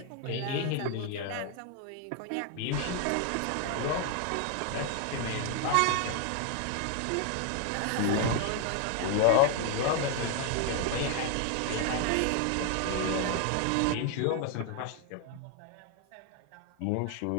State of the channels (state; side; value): different; both; correlation 0.00